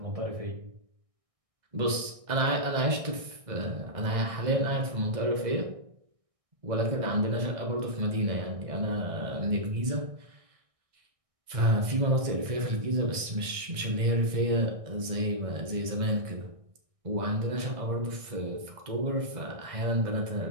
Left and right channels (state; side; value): late; left; 1.6 ms